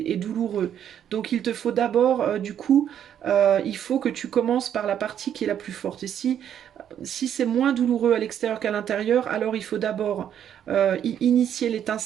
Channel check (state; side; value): quieter; left; 9.6 dB